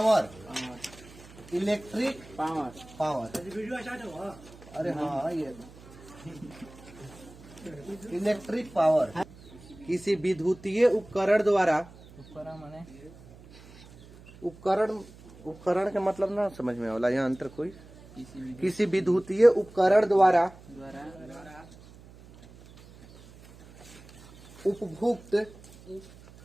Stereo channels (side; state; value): right; noise; hum, 21 dB below the sound